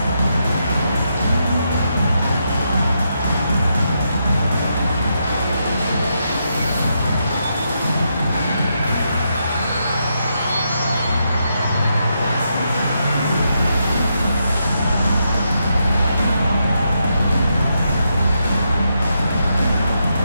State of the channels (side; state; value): both; inverted; correlation -0.82